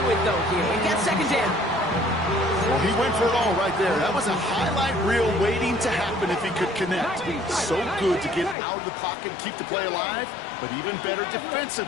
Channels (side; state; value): right; drops out; at 8.6 s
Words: with, though, here. We've got 2nd down. Well, he went for it all right there. That was a highlight reel waiting to happen if he could connect. So good to get out of the pocket and keep the play alive, but even better